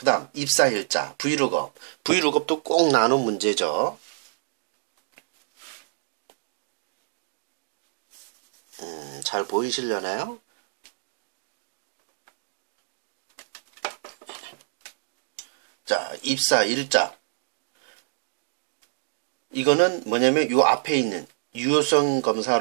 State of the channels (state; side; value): silent; left; digital silence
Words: 다음 입사일자, 브이룩업. 브이룩업도 꼭 나눈 문제죠. 잘 보이시려나요? 자, 입사일자. 이거는 뭐냐면 요 앞에 있는 유효성